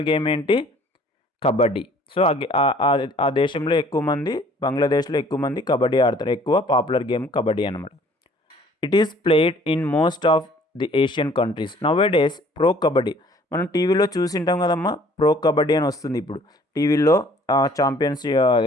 game ఏంటి? కబడ్డీ. సో ఆ దేశంలో ఎక్కువ మంది, బంగ్లాదేశ్లో ఎక్కువ మంది కబడ్డీ ఆడతారు. ఎక్కువ పాపులర్ గేమ్ కబడ్డీ అనమాట. It is played in most of the Asian countries. Nowadays pro kabaddi మనం టీవీలో చూసింటాం కదమ్మా, ప్రో కబడ్డీ అని వస్తుంది ఇప్పుడు టీవీలో. ఛాంపియన్స్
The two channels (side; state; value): both; normal; correlation 0.56